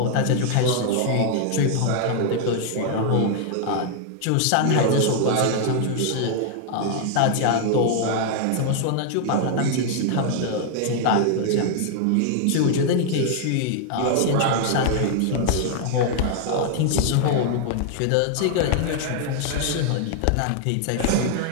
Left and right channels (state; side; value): different; both; correlation 0.00